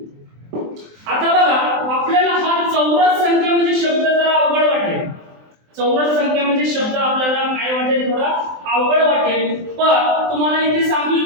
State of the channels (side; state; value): left; late; 23 ms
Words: आता बघा आपल्याला हा चौरस संख्या म्हणजे शब्द जरा अवघड वाटेल. चौरस संख्या म्हणजे शब्द आपल्याला काय वाटेल थोडा अवघड वाटेल. पण तुम्हाला इथे सांगून